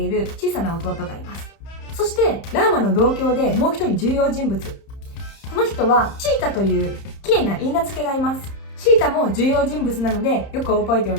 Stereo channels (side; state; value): right; late; 30 ms